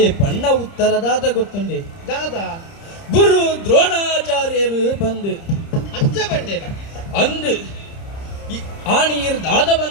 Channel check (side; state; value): right; late; 30 ms